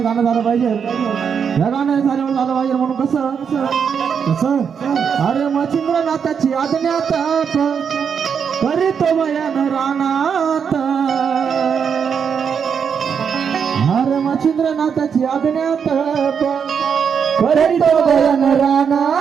गाणं झालं पाहिजे. या गाणं झाल्यावर झालं पाहिजे म्हणून कसं कसं अरे मच्छिंद्रनाथाची आज्ञात करीतो बयान रानात. अरे मच्छिंद्रनाथाची आज्ञात करीतो बयान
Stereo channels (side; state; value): left; quieter; 6.9 dB